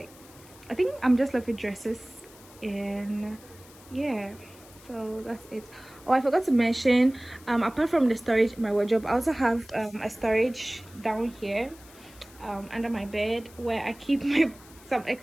I think I'm just left with dresses. And yeah, so that's it. Oh, I forgot to mention, apart from the storage in my wardrobe, I also have a storage down here under my bed, where I keep some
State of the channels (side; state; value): left; noise; hiss, 23 dB below the sound